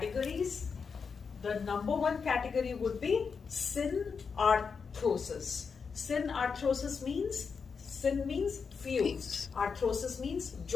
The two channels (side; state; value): right; quieter; 5.6 dB